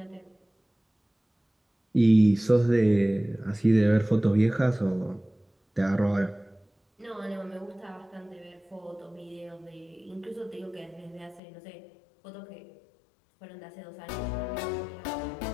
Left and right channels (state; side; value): drops out; right; at 11.4 s